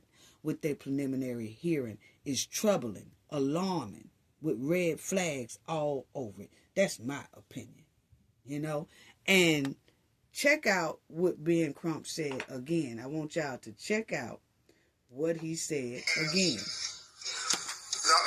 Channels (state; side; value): identical; both; correlation 1.00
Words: with their preliminary hearing is troubling, alarming, with red flags all over it. That's my opinion, And check out what Ben Crump said again. I want y'all to check out what he said again.